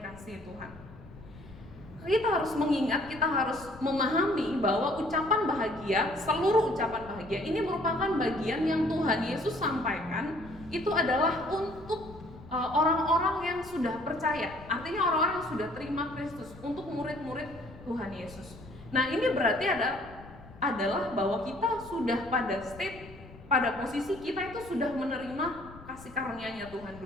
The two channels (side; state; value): left; noise; rumble, 18 dB below the sound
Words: Tuhan. Kita harus mengingat, kita harus memahami bahwa ucapan bahagia, seluruh ucapan bahagia ini merupakan bagian yang Tuhan Yesus sampaikan. Itu adalah untuk orang-orang yang sudah percaya, artinya orang-orang yang sudah terima Kristus, untuk murid-murid Tuhan Yesus. Nah, ini berarti adalah bahwa kita sudah pada posisi kita itu sudah menerima kasih karunia-Nya Tuhan